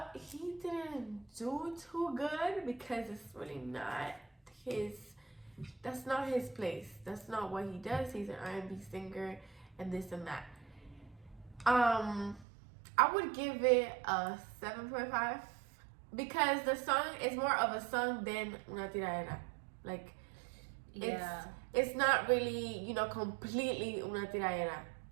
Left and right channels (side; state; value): left; drops out; at 12.5 s